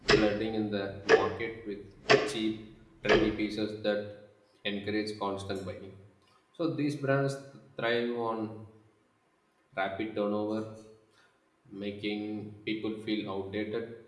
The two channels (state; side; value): identical; both; correlation 1.00